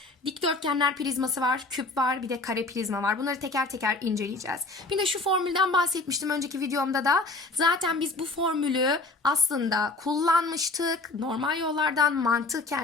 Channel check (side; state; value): right; quieter; 3.3 dB